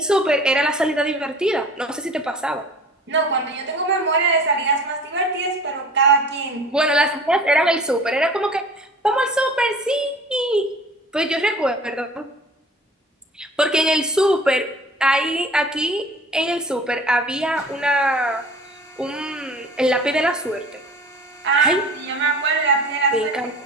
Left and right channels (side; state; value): both; normal; correlation 0.44